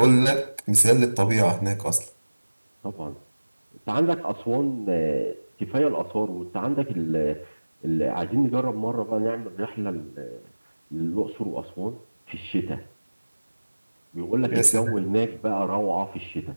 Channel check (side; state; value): both; inverted; correlation -1.00